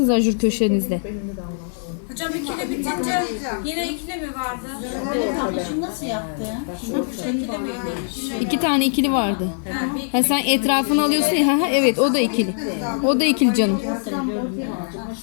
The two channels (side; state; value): right; silent; digital silence